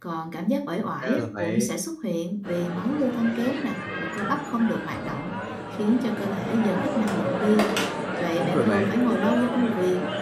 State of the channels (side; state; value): both; identical; correlation 1.00